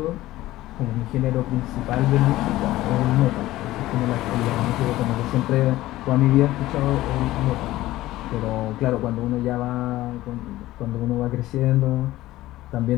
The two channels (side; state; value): right; quieter; 16.3 dB